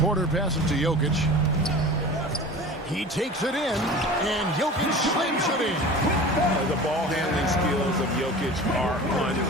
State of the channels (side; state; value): both; normal; correlation 0.37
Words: Porter passes to Jokic. He takes it in, and Jokic slams it in. The ball handling skills of Jokic are